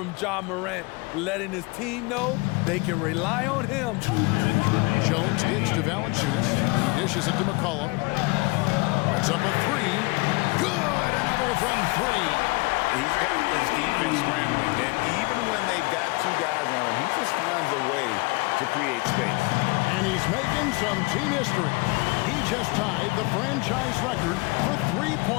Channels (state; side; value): quieter; right; 25.8 dB